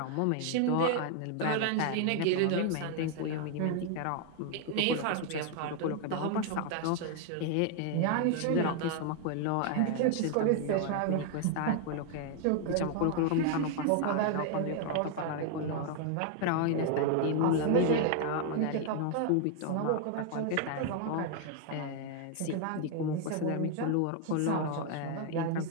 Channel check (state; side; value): different; both; correlation 0.00